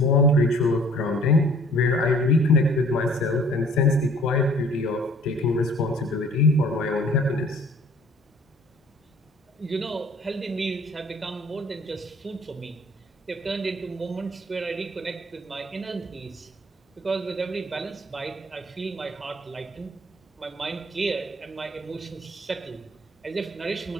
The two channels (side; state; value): both; normal; correlation 0.54